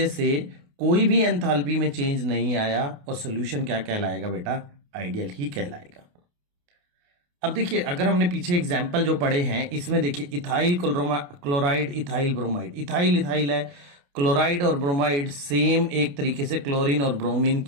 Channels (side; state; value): left; late; 28 ms